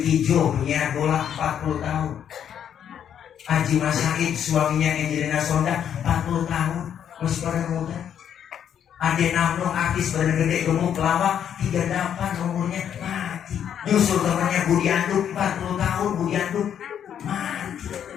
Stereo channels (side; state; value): right; quieter; 9.1 dB